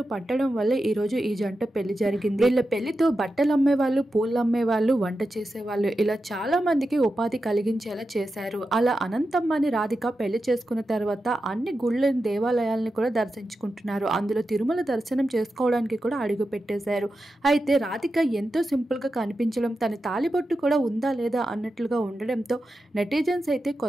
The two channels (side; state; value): both; normal; correlation 0.90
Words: పట్టడం వల్లే ఈరోజు ఈ జంట పెళ్లి జరిగింది. వీళ్ళ పెళ్లితో బట్టలు అమ్మేవాళ్ళు, పూలు అమ్మేవాళ్ళు, వంట చేసేవాళ్ళు ఇలా చాలా మందికి ఉపాధి కలిగించేలా చేశారు. అలా అనంతమ్మాని రాధిక పెళ్లి చేసుకున్న తర్వాత అన్ని గుళ్ళని, దేవాలయాలను కూడా దర్శించుకుంటున్నారు. అందులో తిరుమల దర్శనం చేసుకోవడానికి కూడా అడుగు పెట్టేశారు. అయితే రాధిక ఎంతో సింపుల్ గా కనిపించడం, తన తాలిబొట్టు కూడా ఉందా లేదా అన్నట్లుగా ఉండడంతో నెటిజన్స్ అయితే